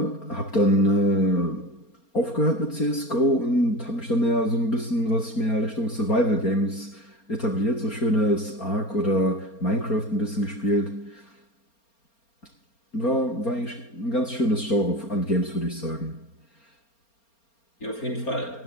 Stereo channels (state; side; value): late; right; 4.3 ms